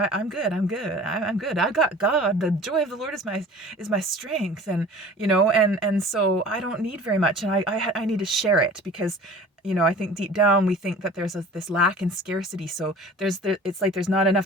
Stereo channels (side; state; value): both; normal; correlation 0.43